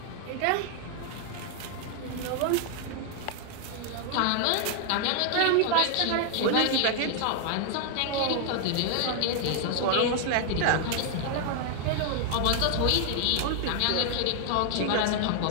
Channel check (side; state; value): both; different; correlation 0.00